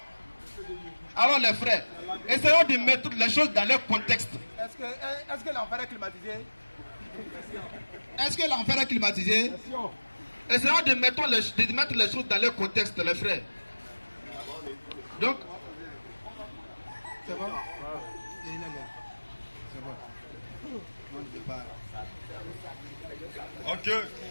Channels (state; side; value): inverted; both; correlation -1.00